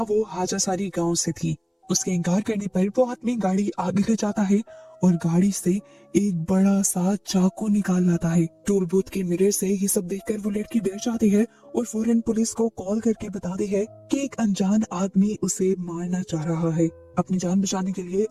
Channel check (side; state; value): both; identical; correlation 1.00